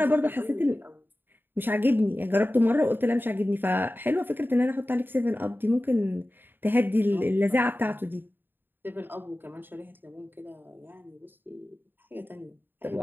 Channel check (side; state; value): left; late; 0.095 ms